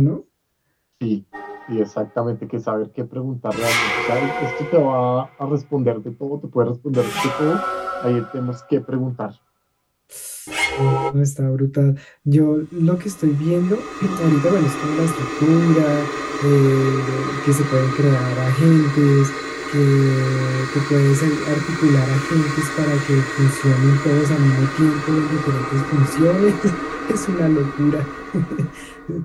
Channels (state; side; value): identical; both; correlation 1.00